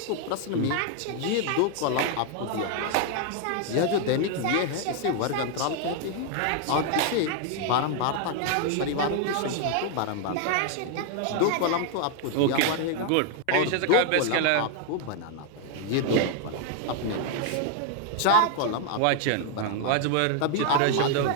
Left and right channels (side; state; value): both; different; correlation 0.00